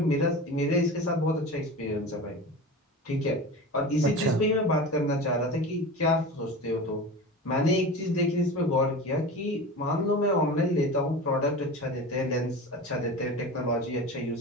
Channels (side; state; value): both; normal; correlation 0.31